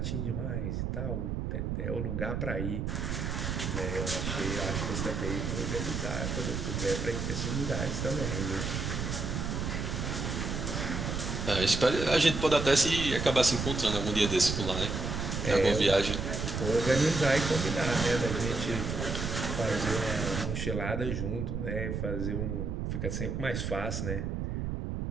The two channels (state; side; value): noise; right; rumble, 2 dB below the sound